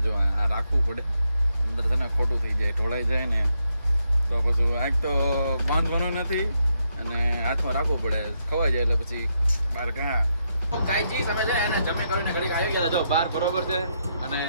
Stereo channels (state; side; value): inverted; both; correlation -0.79